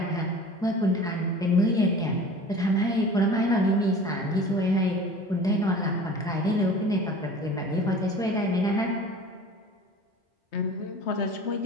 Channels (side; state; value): both; normal; correlation 0.41